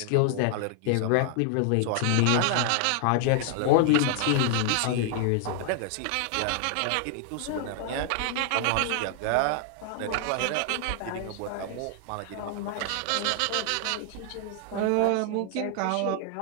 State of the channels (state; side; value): different; both; correlation 0.00